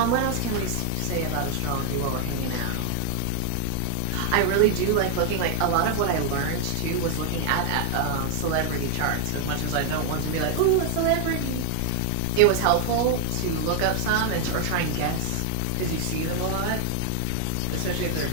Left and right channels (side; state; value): both; different; correlation 0.00